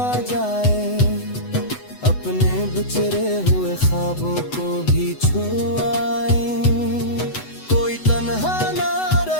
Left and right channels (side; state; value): right; late; 8.0 ms